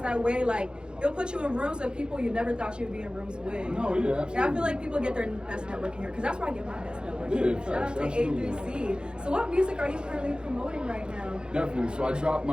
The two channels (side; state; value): left; late; 0.049 ms